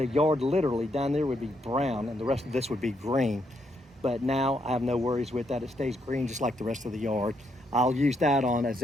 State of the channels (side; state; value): both; normal; correlation 0.76